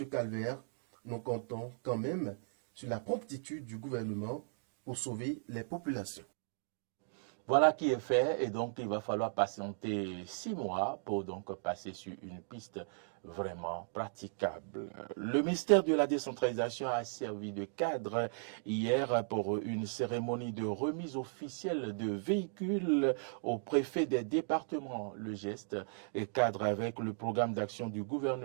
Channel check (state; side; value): silent; left; digital silence